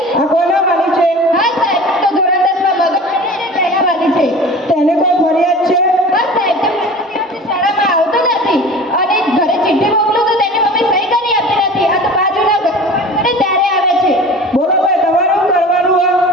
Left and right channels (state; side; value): normal; both; correlation 0.38